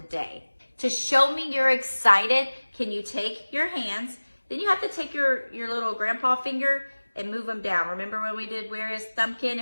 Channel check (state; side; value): inverted; both; correlation -1.00